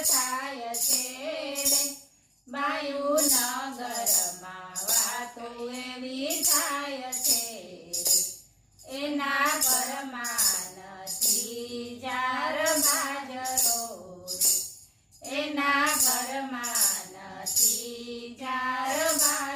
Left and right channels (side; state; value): both; identical; correlation 1.00